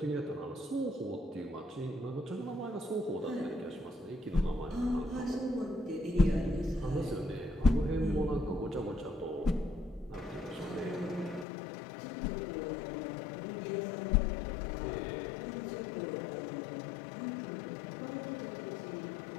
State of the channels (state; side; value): drops out; right; at 11.5 s